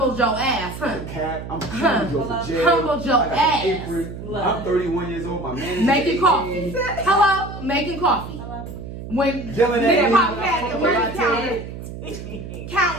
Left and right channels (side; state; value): right; noise; hum, 10 dB below the sound